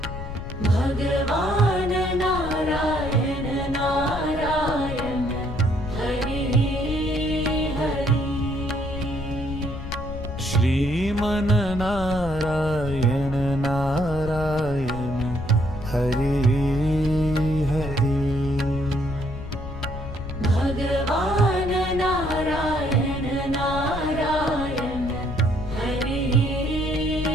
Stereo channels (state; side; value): noise; left; rumble, 8 dB below the sound